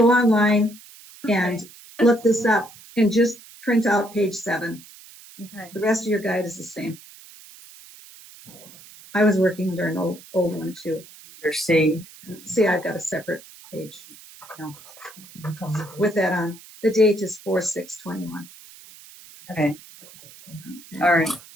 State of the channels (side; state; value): right; noise; hiss, 20 dB below the sound